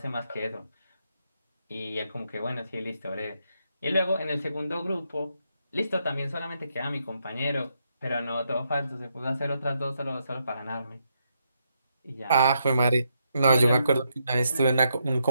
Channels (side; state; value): both; inverted; correlation -0.79